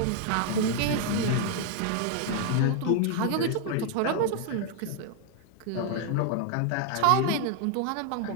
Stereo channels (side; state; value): both; different; correlation 0.00